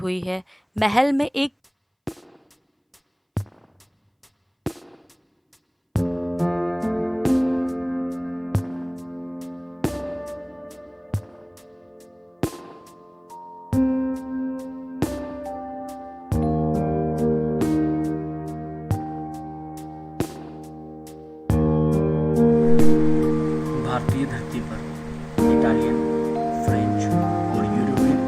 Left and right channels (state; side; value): identical; both; correlation 1.00